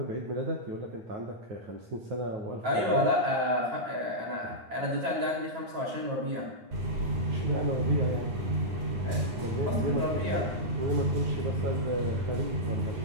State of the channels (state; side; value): late; left; 9.2 ms